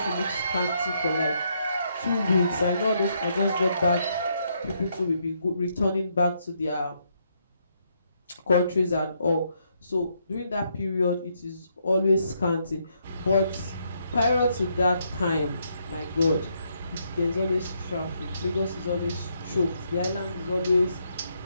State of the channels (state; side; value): inverted; both; correlation -0.76